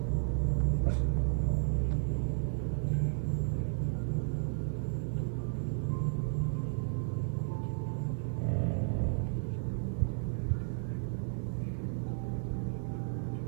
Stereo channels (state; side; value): silent; left; 56 dB below the other